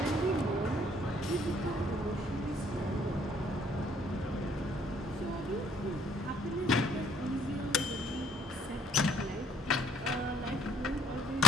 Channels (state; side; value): normal; both; correlation 0.61